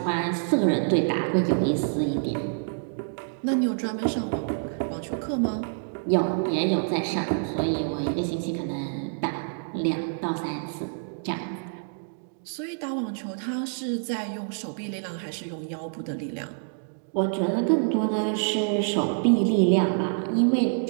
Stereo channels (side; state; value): left; silent; digital silence